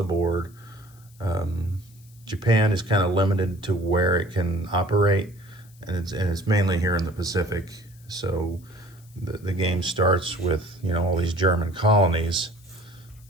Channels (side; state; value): left; noise; hiss, 28 dB below the sound